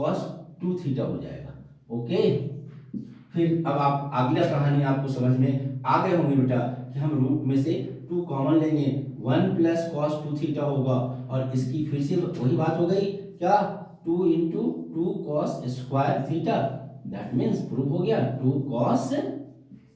2 थीटा हो जाएगा। ओके, फिर अब आप अगला कहानी आपको समझ में आ गए होंगे बेटा कि हम रूट में से 2 कॉमन लेंगे, 1 प्लस cos 2 थीटा होगा और इसकी फिर से वही बात हो गई क्या, 2 into 2 cos square theta, that means proof हो गया 2 cos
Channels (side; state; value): both; identical; correlation 1.00